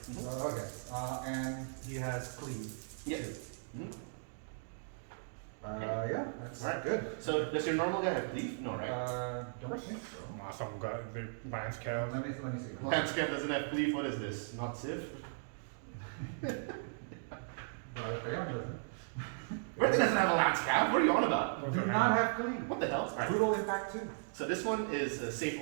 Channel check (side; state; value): left; silent; digital silence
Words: Okay, and he has cleave. Yeah. Yeah, that's Right. good. So does your normal guy have cleave? No, right? Don't think so. Some guy, the Lance Cal. Let me see. Landscape doesn't have cleave. What is this? Not Civ? Leon doesn't. Bertie doesn't have a Landscape. What are you on about? Do not have cleave. What the hell? Alright. Brutal impact 2. So this one is a save